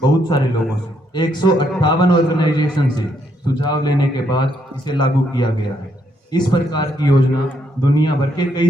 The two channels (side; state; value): both; normal; correlation 0.74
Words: सारे लोगों से 158 ऑर्गेनाइजेशन से सुझाव लेने के बाद इसे लागू किया गया है। इस प्रकार की योजना दुनिया भर के